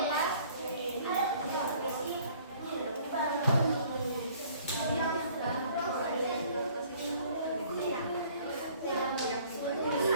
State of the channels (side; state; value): both; inverted; correlation -0.56